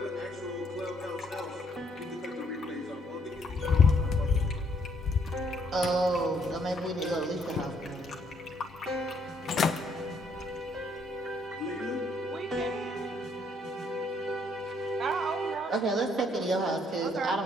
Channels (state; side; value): normal; both; correlation 0.69